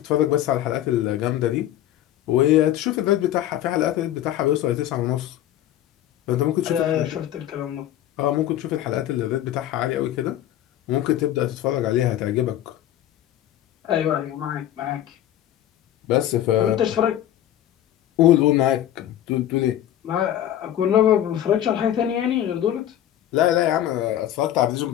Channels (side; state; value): right; quieter; 12.0 dB